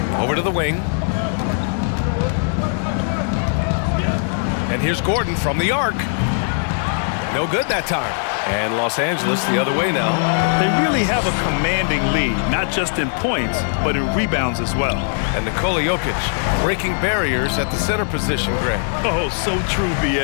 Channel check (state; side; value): silent; right; digital silence